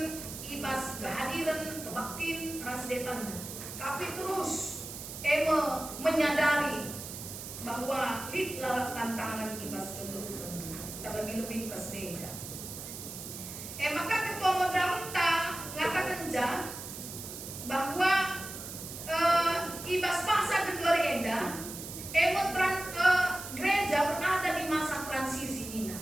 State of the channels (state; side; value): noise; right; hiss, 10 dB below the sound